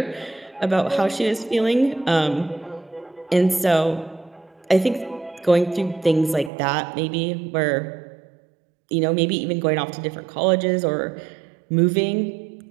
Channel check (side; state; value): left; drops out; at 6.5 s